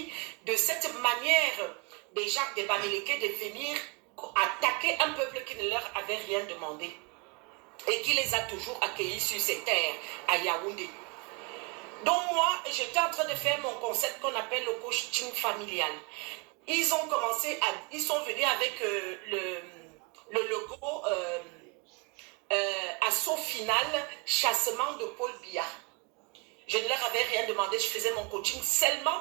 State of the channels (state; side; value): quieter; left; 29.3 dB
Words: de cette manière des gens des Bamileke de venir attaquer un peuple qui ne leur avait rien demandé et qui les a toujours accueillis sur ces terres à Yaoundé. Donc moi, j'étais en train de faire mon concept qu'on appelle le coaching familial. Ils ont commencé ils sont venus avec le logo assaut final, chassement de Paul Biya. Je ne leur avais rien demandé, je faisais mon coaching seulement